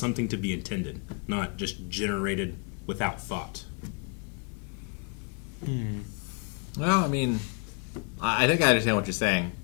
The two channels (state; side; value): quieter; right; 35.2 dB